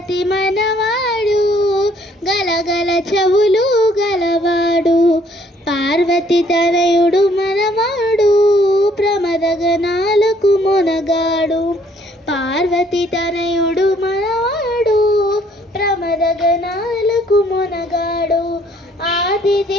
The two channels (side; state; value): both; normal; correlation 0.63